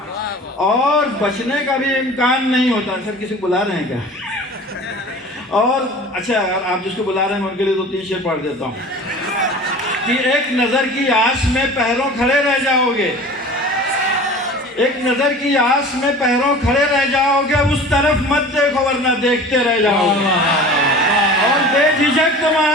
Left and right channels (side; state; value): both; normal; correlation 0.40